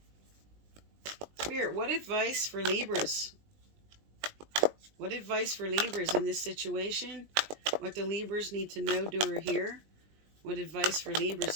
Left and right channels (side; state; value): left; late; 20 ms